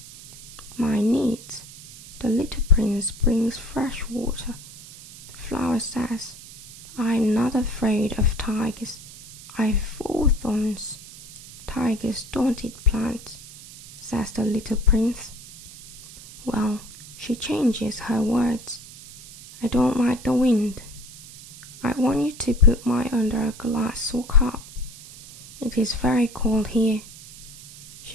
my needs. The little prince brings fresh water. The flower says, I am not afraid of tigers. I have 4 thorns. Tigers don't eat plants, says the little prince. Well, she changes her words. I don't like the wind. I want you to put mine under a glass or cup. It is very cold here.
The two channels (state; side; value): noise; right; hiss, 17 dB below the sound